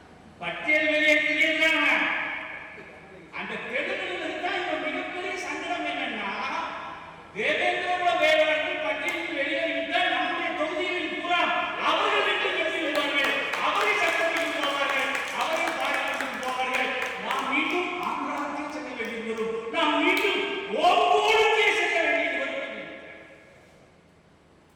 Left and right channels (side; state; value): both; identical; correlation 1.00